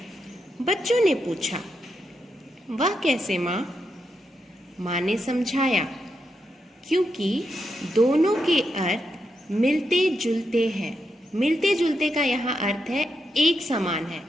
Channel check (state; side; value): normal; both; correlation 0.84